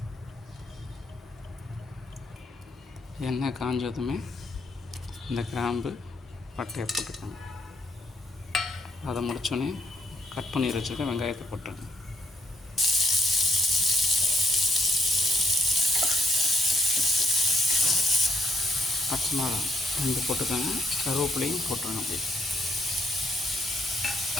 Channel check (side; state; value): both; normal; correlation 0.71